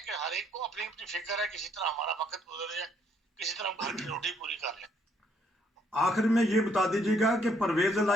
कि हर एक को अपनी अपनी फिक्र है, किसी तरह हमारा वक्त गुजर जाए, किसी तरह घर की रोटी पूरी कर ले। आखिर में ये बता दीजिएगा कि परवेज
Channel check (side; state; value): both; normal; correlation 0.68